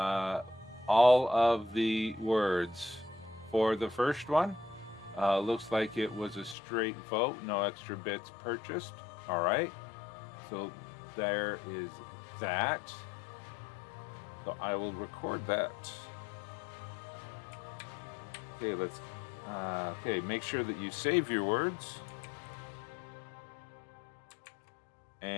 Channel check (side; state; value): right; drops out; at 6.6 s